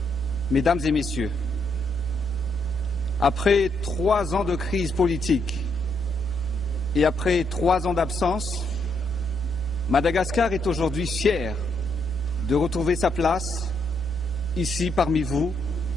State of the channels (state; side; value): noise; left; rumble, 22 dB below the sound